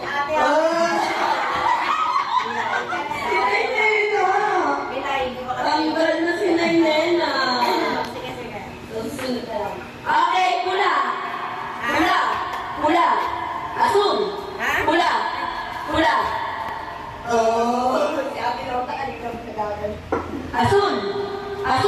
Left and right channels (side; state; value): both; identical; correlation 1.00